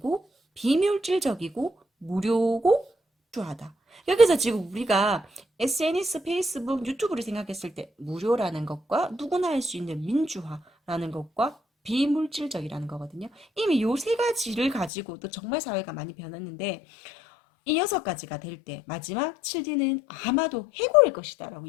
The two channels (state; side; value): drops out; right; at 14.9 s